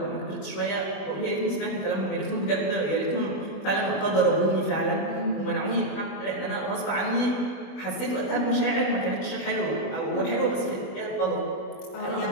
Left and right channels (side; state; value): right; late; 21 ms